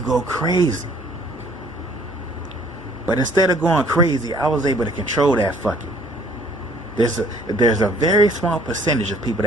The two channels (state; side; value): normal; both; correlation 0.58